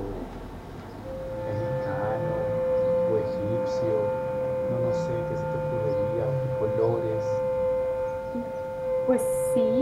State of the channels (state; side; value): identical; both; correlation 1.00